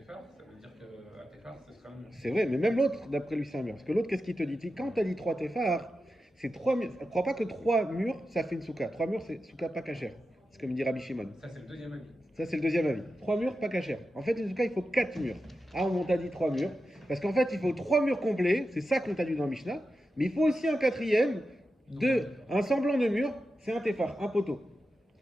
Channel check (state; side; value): normal; both; correlation 0.91